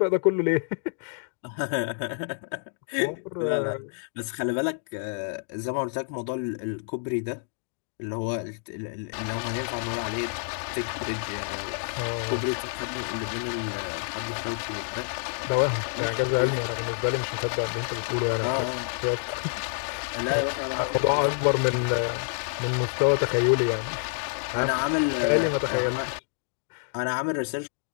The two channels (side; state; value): right; silent; digital silence